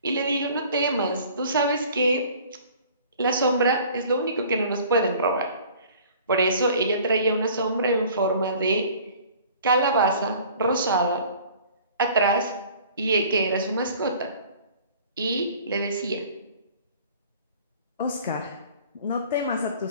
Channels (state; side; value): inverted; both; correlation -0.49